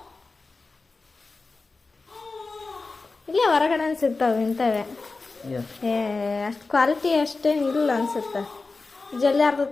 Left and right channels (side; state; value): right; quieter; 3.8 dB